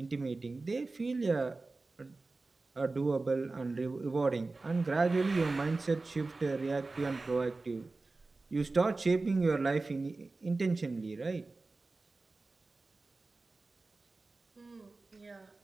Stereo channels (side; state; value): left; quieter; 3.5 dB